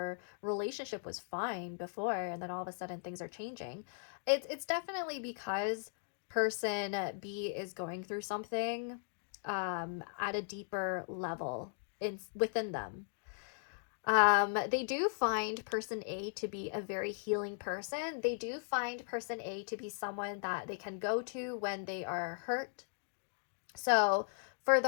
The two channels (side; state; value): right; silent; digital silence